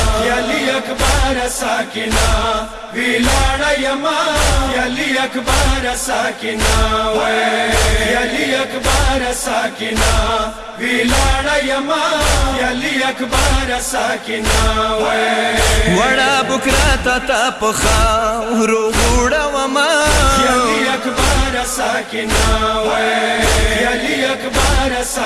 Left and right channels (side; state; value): both; identical; correlation 1.00